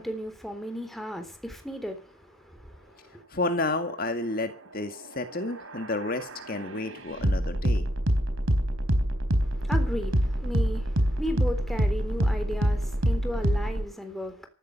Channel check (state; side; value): normal; both; correlation 0.78